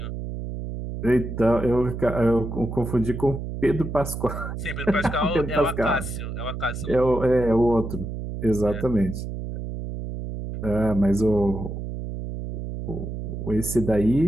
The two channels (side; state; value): right; noise; hum, 6 dB below the sound